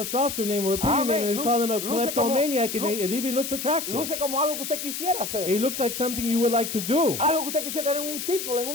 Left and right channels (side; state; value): left; noise; hiss, 5 dB below the sound